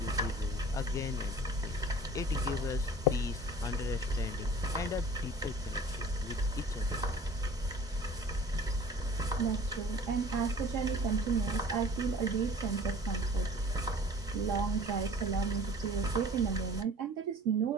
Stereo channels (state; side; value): normal; both; correlation 0.46